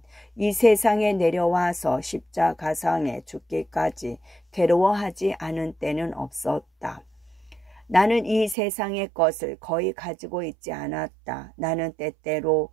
이 세상에 내려와서 십자가상에 죽기까지 괴로워하지 않은 때는 없었다. 나는 이 세상의 것을 거의 가지고 있지 않았다. 나는 때때로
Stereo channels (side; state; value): left; drops out; at 8.6 s